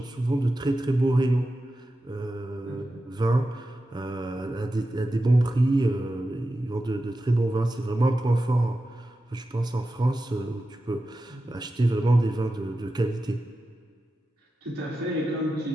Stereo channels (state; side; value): normal; both; correlation 0.92